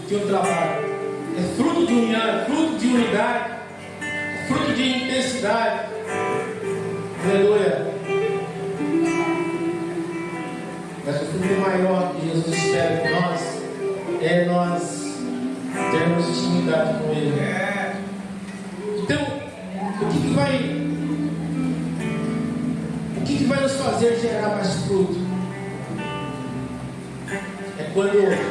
de um trabalho. É fruto de união, é fruto de unidade, é fruto de intensidade. Aleluia. Mas o fruto maior que Jesus espera de nós é nós termos intimidade com Ele. Então, o que vai nos fazer gerar mais fruto? É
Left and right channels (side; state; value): both; identical; correlation 1.00